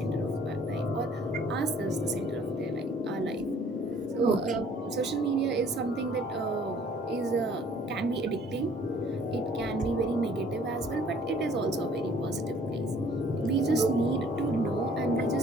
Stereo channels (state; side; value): normal; both; correlation 0.56